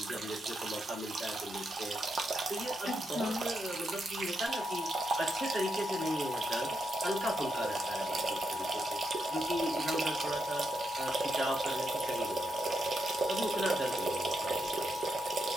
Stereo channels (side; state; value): both; normal; correlation 0.82